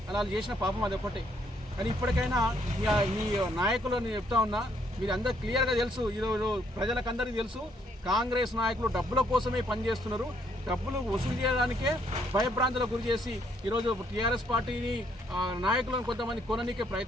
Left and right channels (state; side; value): normal; both; correlation 0.70